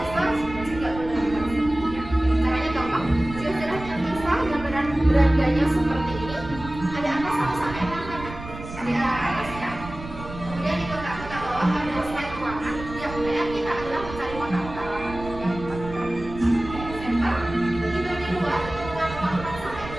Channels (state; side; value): noise; right; rumble, 12 dB below the sound